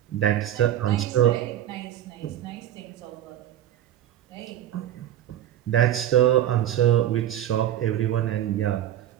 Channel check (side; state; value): left; quieter; 11.7 dB